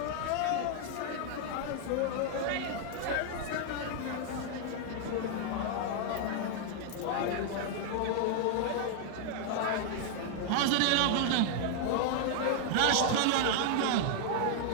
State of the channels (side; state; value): both; different; correlation 0.00